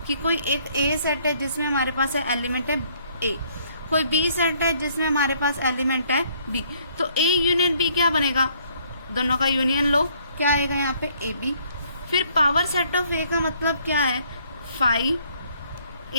कि कोई एक ए सेट है जिसमें हमारे पास एलिमेंट है ए, कोई बी सेट है जिसमें हमारे पास एलिमेंट है बी, तो ए यूनियन बी क्या बनेगा, दोनों का यूनियन लो, क्या आएगा यहाँ पे ए बी। फिर पावर सेट ऑफ ए का मतलब क्या है, 5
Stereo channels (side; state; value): both; inverted; correlation -0.64